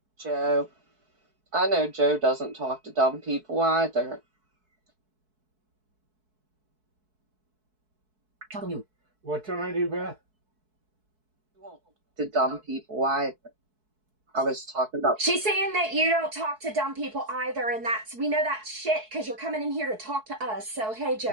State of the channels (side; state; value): left; late; 4.6 ms